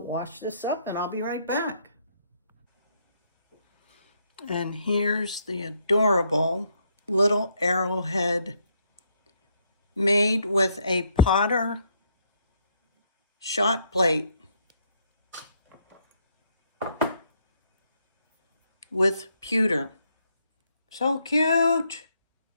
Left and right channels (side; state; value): both; inverted; correlation -0.71